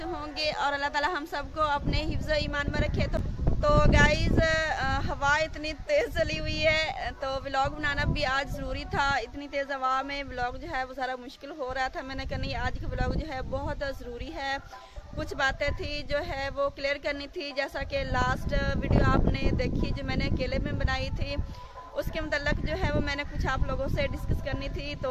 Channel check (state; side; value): identical; both; correlation 1.00